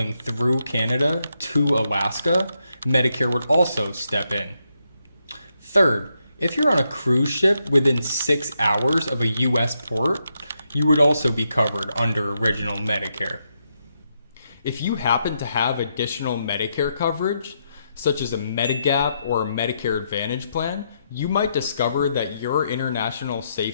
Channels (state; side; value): inverted; both; correlation -0.81